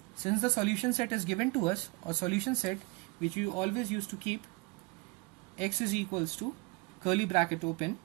since the solution set is given to us, a solution set which we always used to keep, x is equals to curly bracket open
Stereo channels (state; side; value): quieter; left; 26.3 dB